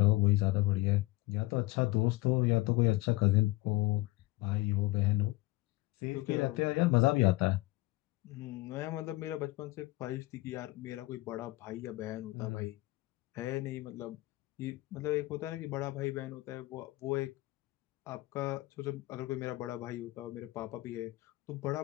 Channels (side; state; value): right; quieter; 20.1 dB